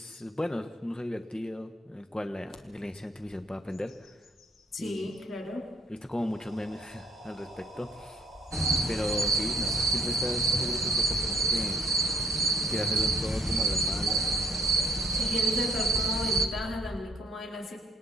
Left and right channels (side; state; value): both; normal; correlation 0.62